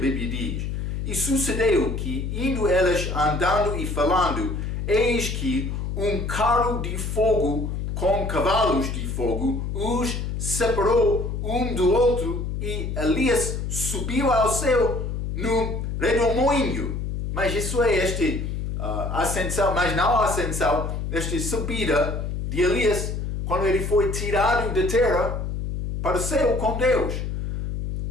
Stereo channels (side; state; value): left; noise; hum, 3 dB below the sound